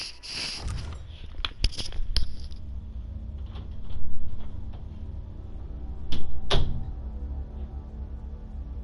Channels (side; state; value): both; identical; correlation 1.00